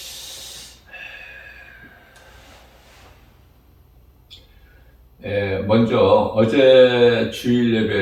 먼저 어제 주일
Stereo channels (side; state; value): both; identical; correlation 1.00